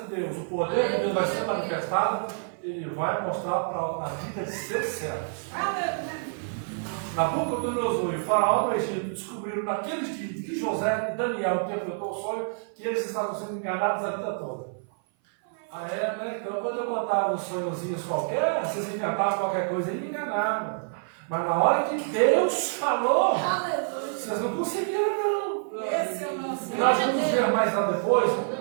Deus, o poder de Deus vai ser manifestado, ele vai mostrar para a vida de seus servos. Nabucodonosor e o faraó do Egito descobriram naqueles dias que José e Daniel interpretou o sonho, que eles estavam sendo enganados a vida toda. Né? Então, quando eu contava uns sonhozinhos qualquer, vocês inventavam qualquer coisa e me enganavam. Mas na hora que Deus falou, vocês não conseguiram, não. Esse é o nosso. E nós vamos ver mais lá depois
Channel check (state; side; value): silent; left; 56 dB below the other